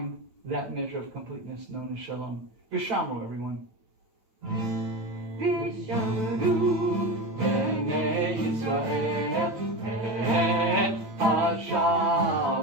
that measure of completeness known as Shalom. Vishamru, everyone. Vishamru Bnei Yisrael et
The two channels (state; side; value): late; left; 9.0 ms